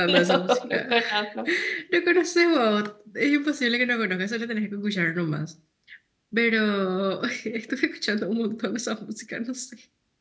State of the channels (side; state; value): both; identical; correlation 1.00